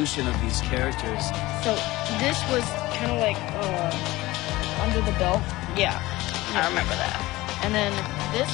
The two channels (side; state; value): right; quieter; 19.0 dB